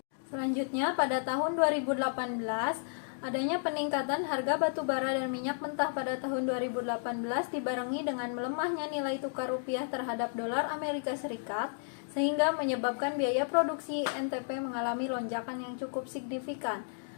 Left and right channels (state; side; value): silent; right; digital silence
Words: Selanjutnya, pada tahun 2018, adanya peningkatan harga batu bara dan minyak mentah pada tahun 2018 dibarengi dengan melemahnya nilai tukar rupiah terhadap dolar Amerika Serikat, sehingga menyebabkan biaya produksi INTP mengalami lonjakan yang cukup signifikan.